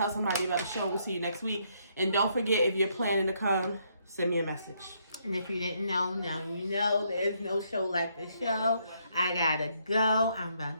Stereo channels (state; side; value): inverted; both; correlation -0.73